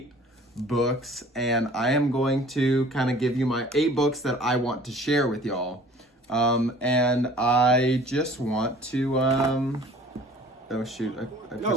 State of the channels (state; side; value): normal; both; correlation 0.49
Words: books, and I am going to kind of give you my 8 books that I want to share with y'all. And I just want to, oh shoot, I